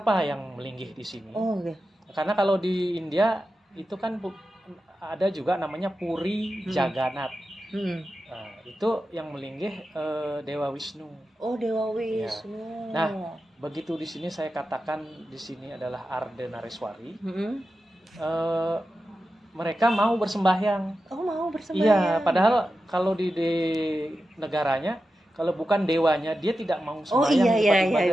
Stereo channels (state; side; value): normal; both; correlation 0.91